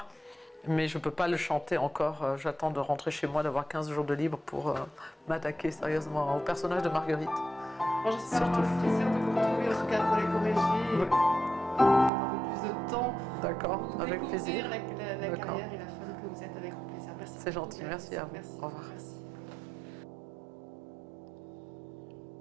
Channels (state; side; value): drops out; left; at 12.1 s